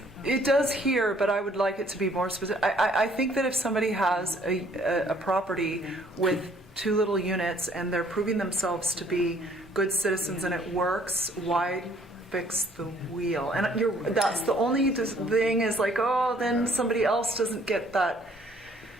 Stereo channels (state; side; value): normal; both; correlation 0.61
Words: It does here, but I would like it to be more specific. I think that if somebody has a property with 2 little units and they're proving themselves to be good citizens and it works, why fix the wheel? And that's the only thing is like, oh, then somebody else doesn't get that,